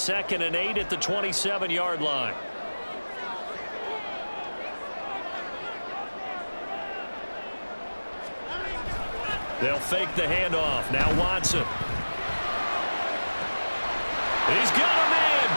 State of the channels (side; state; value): both; inverted; correlation -1.00